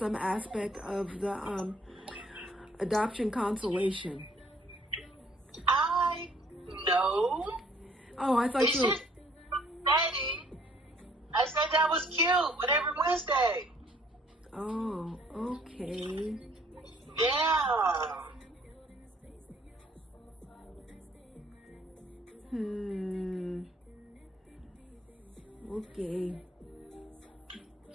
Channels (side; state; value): both; normal; correlation 0.61